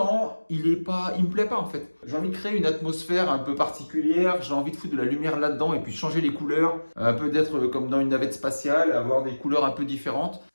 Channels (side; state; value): both; inverted; correlation -1.00